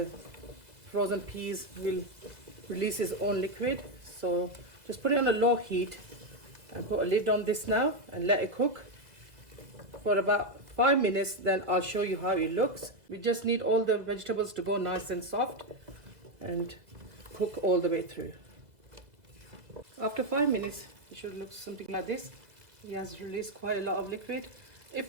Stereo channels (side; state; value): left; late; 2.0 ms